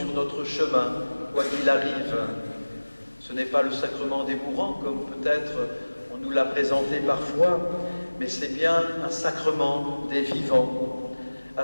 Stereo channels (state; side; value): inverted; both; correlation -1.00